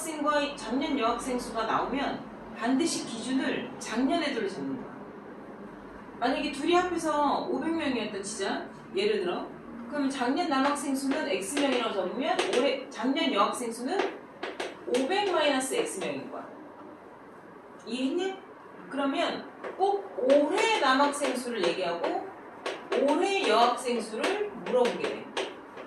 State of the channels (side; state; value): both; identical; correlation 1.00